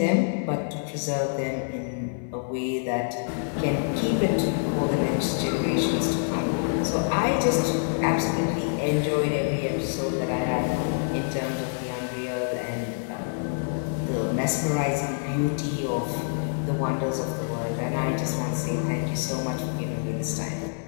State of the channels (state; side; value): silent; right; digital silence